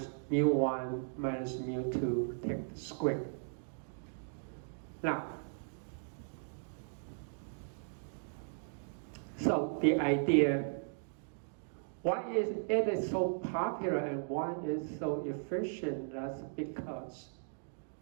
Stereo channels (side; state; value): left; silent; digital silence